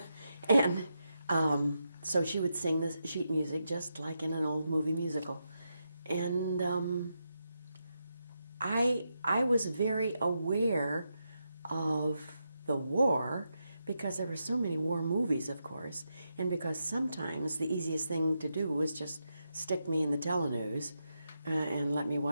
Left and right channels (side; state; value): both; inverted; correlation -0.85